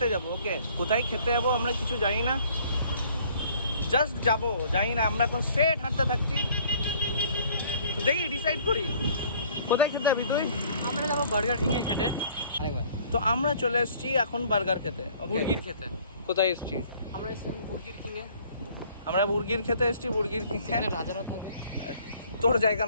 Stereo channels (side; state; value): both; inverted; correlation -0.57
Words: যাব। ওকে, কোথায় খেতে যাবো আমরা কিছু জানি না, জাস্ট যাবো, জানি না। আমরা এখন স্ট্রেট হাঁটতে থাকছি, তো দেখি ডিসাইড করি কোথায় খেতে যাবি তুই। আমরা যাবো বার্গার কিং এ খেতে আরেকবার। তো আমরা চলে এসেছি এখন বার্গার খেতে, বুর্গির খেতে। কোথায় এসেছি আমরা এসেছিলাম বুর্গির কিং এ। আমরা বুর্গির খেতে এসেছি, বুর্গির কিং। এখানে রাজারা থাকে, তোর জায়গা